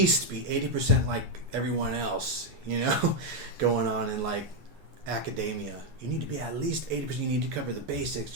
be 80% like everyone else, you know, going on in like academia. You need to be at least 80%. You need to cover the basics.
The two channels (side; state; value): left; late; 9.8 ms